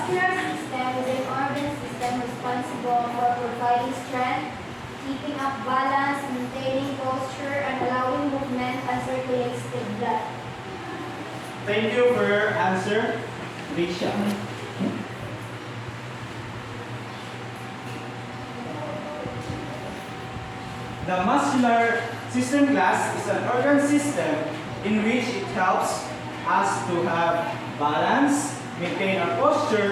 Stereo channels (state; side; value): identical; both; correlation 1.00